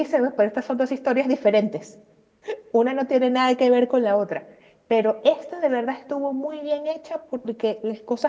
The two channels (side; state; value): both; identical; correlation 1.00